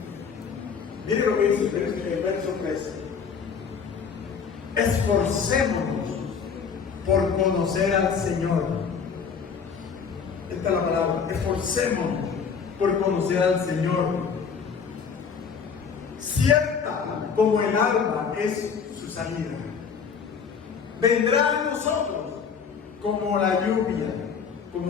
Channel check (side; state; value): right; quieter; 6.3 dB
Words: Miren lo que dice el verso 13. Esforcémonos por conocer al Señor. Esta es la palabra. Esforcémonos por conocer al Señor. Cierta como el alba es su salida. Vendrá a nosotros como la lluvia